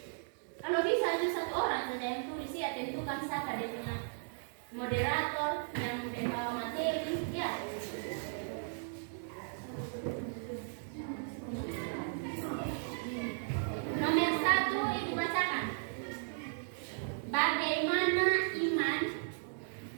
Kalau bisa itu satu orang saja yang tulis ya, tentukan siapa dia punya moderator yang membawa materi ya. Nomor satu ibu bacakan. Bagaimana iman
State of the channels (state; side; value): silent; left; digital silence